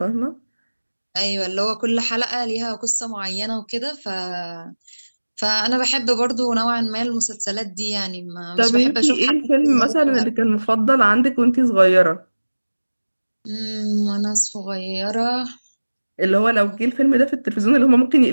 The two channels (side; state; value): both; inverted; correlation -1.00